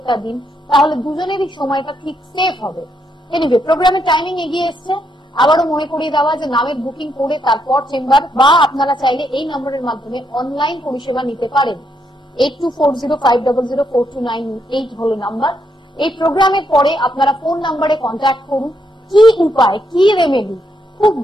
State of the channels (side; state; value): both; normal; correlation 0.78